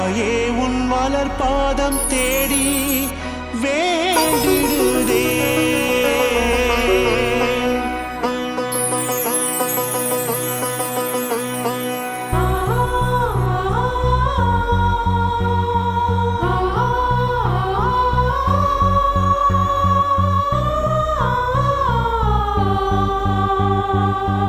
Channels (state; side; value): identical; both; correlation 1.00